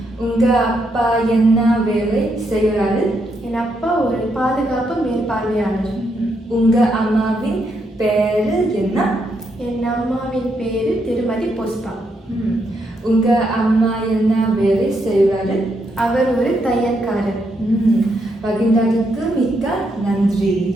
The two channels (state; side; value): normal; both; correlation 0.78